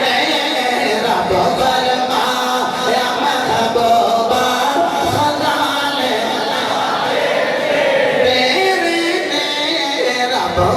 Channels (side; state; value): both; identical; correlation 1.00